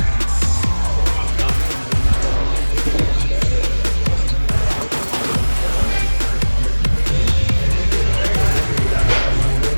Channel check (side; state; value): both; inverted; correlation -1.00